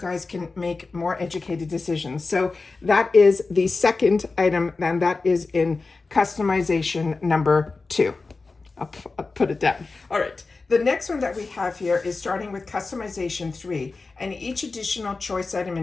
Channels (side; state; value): right; quieter; 3.9 dB